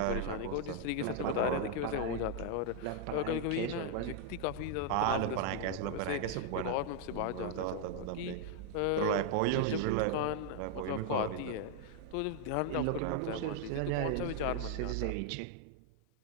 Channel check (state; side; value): different; both; correlation 0.00